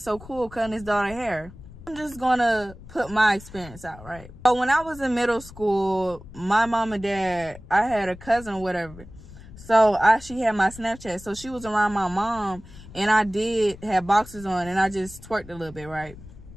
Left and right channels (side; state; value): left; noise; rumble, 17 dB below the sound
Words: So Cool cutting his daughter's hair. I'm just gonna put my experience out, right? So when I was in middle school, my mom and dad, I had a cousin or whatever. So she had my Snapchat. So she was around my mom, and I did have boxers on, and I just twerked a little bit, right?